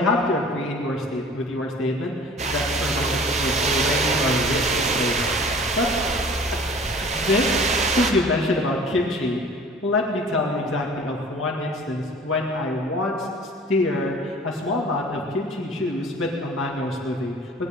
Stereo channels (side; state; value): both; normal; correlation 0.46